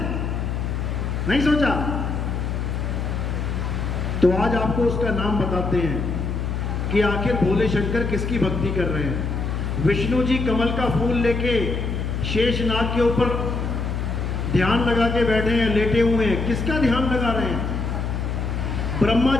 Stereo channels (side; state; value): left; noise; hum, 2 dB below the sound